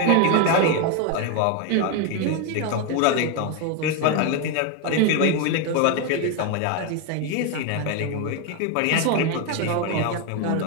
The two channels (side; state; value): both; different; correlation 0.02